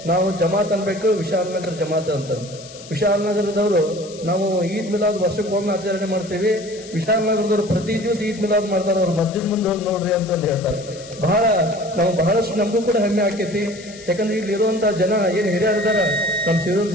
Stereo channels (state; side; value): noise; left; hiss, 18 dB below the sound